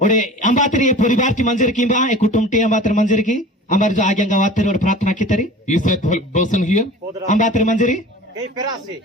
और अंबातरी परिवार की मंजर की बा एक कुटुंब टी अंबातर मंजर की हमारे जो आगे गवातर और प्रार्थना की तरी. Is that person here? अंबातर Manjari.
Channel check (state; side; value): normal; both; correlation 0.40